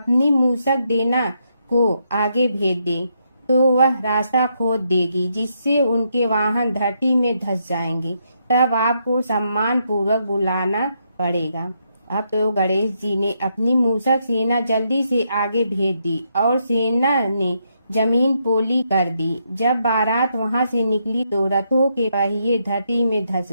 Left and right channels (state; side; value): inverted; both; correlation -0.78